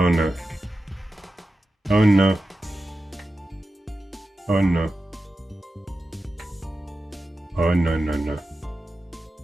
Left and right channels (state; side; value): normal; both; correlation 0.92